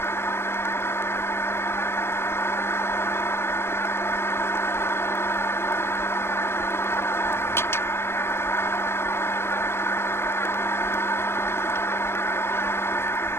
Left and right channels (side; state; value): right; late; 0.12 ms